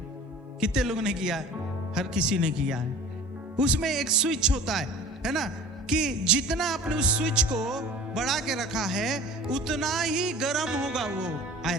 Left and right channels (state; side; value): normal; both; correlation 0.42